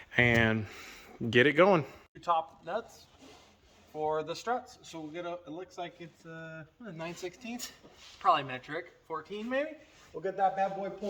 and get it going. 2 top nuts for the struts. So we'll get it looks like it's 9/16, probably metric, 14 maybe. We'll get that bad boy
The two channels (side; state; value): both; identical; correlation 1.00